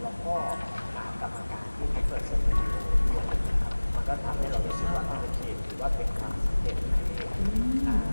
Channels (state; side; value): inverted; both; correlation -1.00